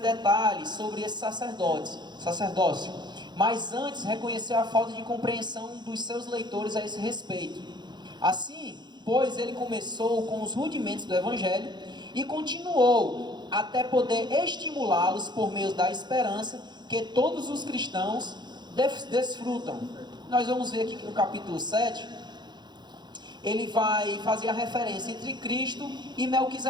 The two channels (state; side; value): late; left; 0.21 ms